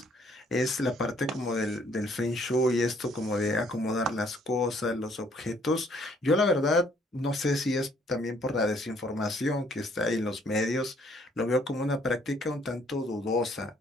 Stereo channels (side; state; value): both; normal; correlation 0.63